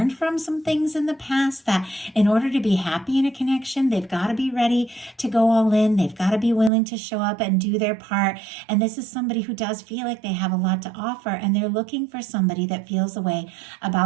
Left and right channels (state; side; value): drops out; left; at 6.7 s